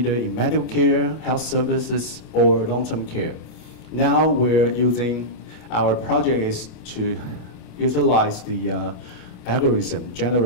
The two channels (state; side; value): late; right; 27 ms